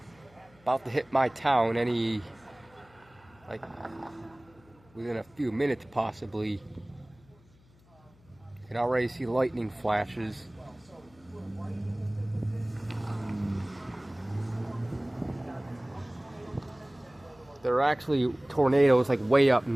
about to hit my town any within a few minutes possibly. You can already see lightning flashes. There are actually tornadoes like way up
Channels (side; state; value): left; noise; hum, 29 dB below the sound